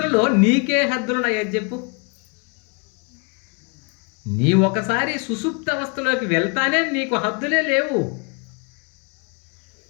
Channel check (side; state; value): right; quieter; 34.6 dB